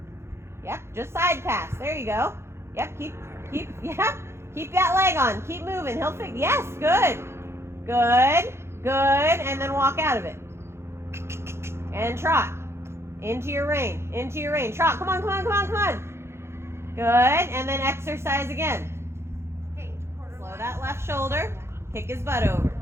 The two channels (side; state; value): left; late; 0.12 ms